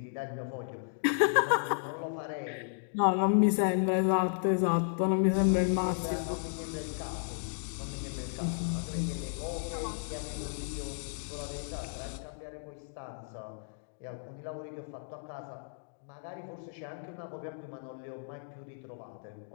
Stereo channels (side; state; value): right; silent; digital silence